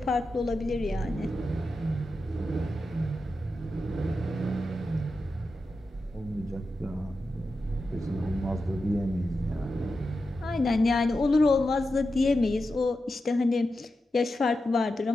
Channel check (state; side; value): normal; both; correlation 0.90